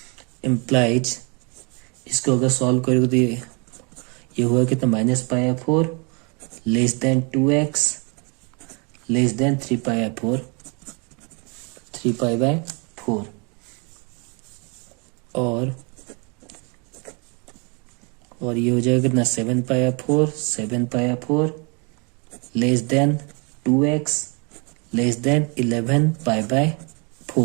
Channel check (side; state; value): left; quieter; 32.7 dB